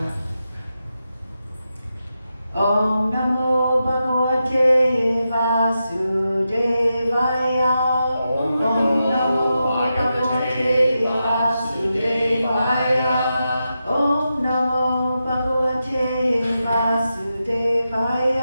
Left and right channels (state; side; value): inverted; both; correlation -0.88